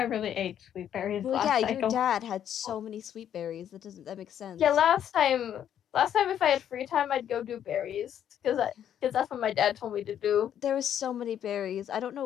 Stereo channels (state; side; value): quieter; right; 9.9 dB